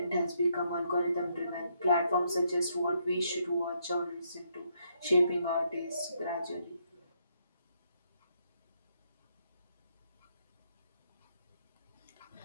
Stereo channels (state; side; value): inverted; both; correlation -0.75